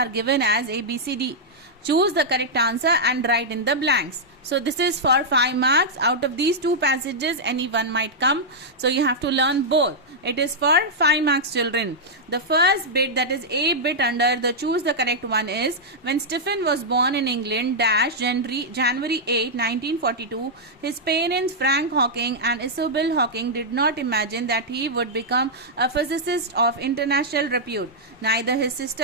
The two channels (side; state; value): both; normal; correlation -0.07